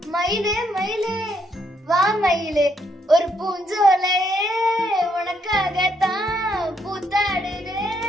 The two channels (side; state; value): both; normal; correlation 0.74